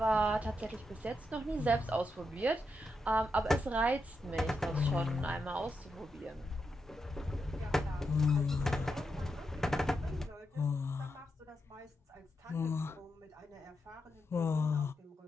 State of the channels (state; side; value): normal; both; correlation 0.85